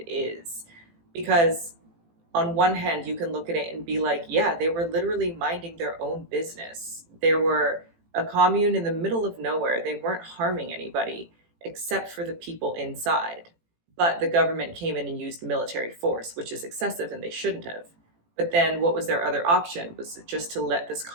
is. Because on one hand, you can look at it and be like, yeah, they were literally minding their own business. There were a commune in the middle of nowhere. They weren't harming anybody except for the people inside. But the government came in and used military force, which is excessive and they shouldn't have. But then what was their other option? Was just to let this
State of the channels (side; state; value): left; late; 18 ms